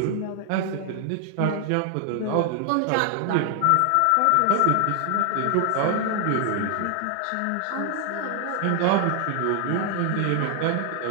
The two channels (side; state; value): both; different; correlation 0.00